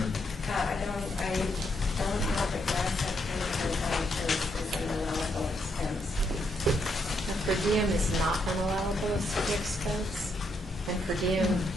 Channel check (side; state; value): both; normal; correlation 0.77